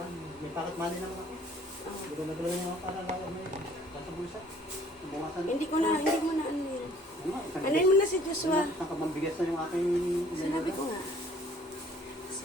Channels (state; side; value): normal; both; correlation 0.56